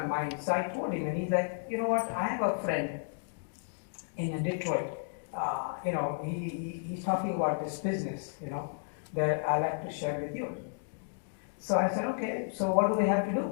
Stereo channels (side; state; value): right; silent; digital silence